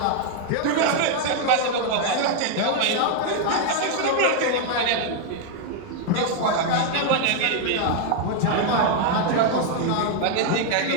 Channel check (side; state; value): both; different; correlation 0.00